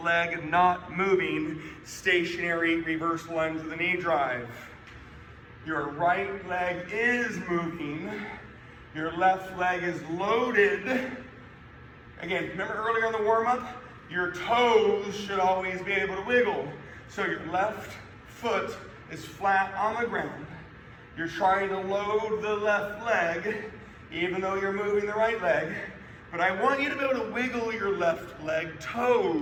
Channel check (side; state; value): both; identical; correlation 1.00